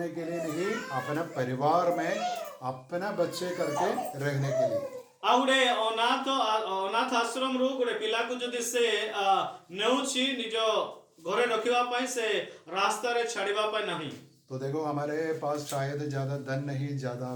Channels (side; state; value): both; identical; correlation 1.00